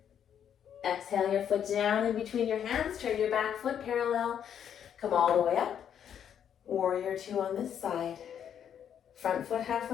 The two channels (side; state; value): right; quieter; 8.9 dB